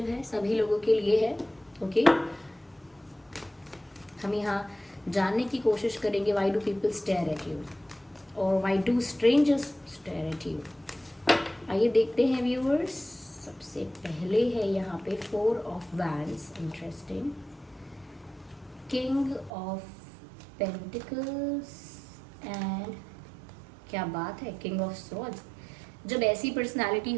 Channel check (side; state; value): left; drops out; at 19.5 s